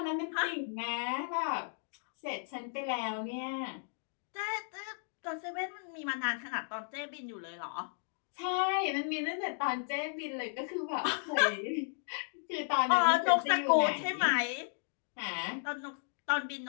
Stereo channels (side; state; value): right; silent; digital silence